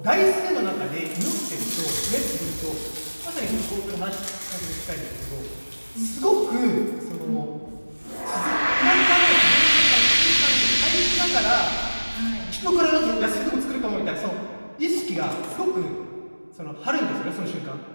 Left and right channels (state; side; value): inverted; both; correlation -1.00